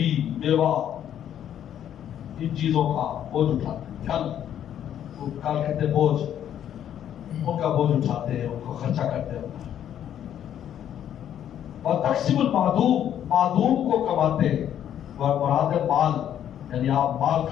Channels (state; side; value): quieter; right; 10.2 dB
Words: بیوہ ان چیزوں کا بوجھ اٹھاتے ہیں. کل کہتے ہیں بوجھ, ان کا بوجھ اٹھاتے ہیں, ان کو خرچہ کرتے ہیں. وتقسم المعدوم, معدوم کو کماتے ہیں, مراد مال, یعنی آپ مال